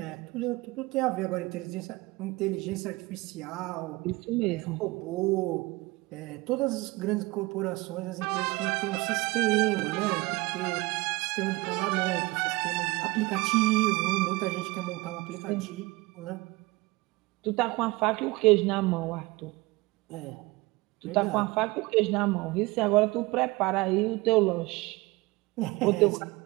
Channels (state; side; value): quieter; left; 22.4 dB